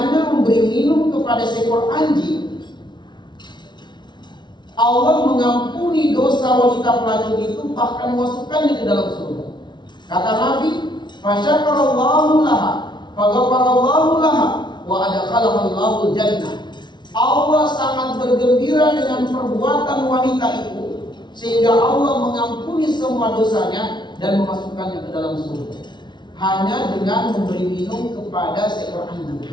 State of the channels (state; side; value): late; right; 0.21 ms